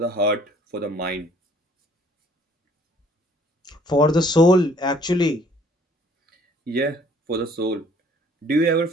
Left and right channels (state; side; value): normal; both; correlation 0.58